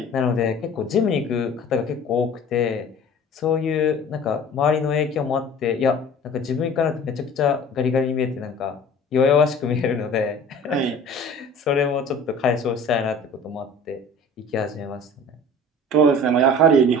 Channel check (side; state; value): both; normal; correlation 0.44